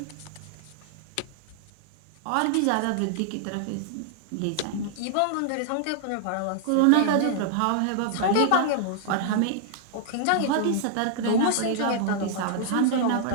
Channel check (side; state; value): both; different; correlation -0.01